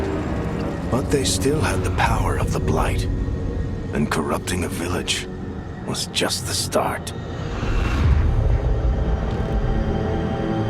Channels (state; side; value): identical; both; correlation 1.00